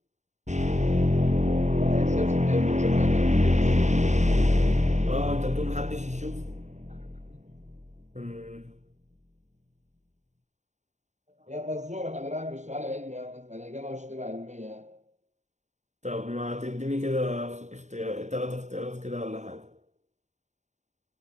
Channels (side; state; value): left; late; 0.34 ms